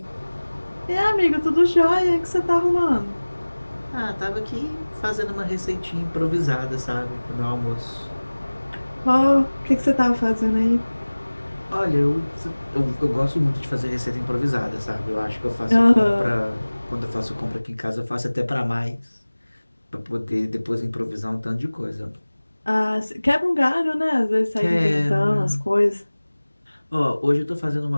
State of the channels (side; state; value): both; inverted; correlation -1.00